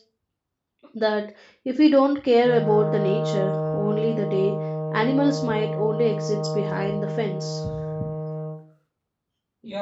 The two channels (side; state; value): both; identical; correlation 1.00